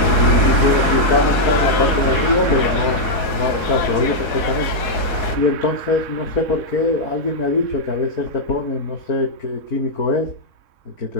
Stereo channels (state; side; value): late; right; 4.7 ms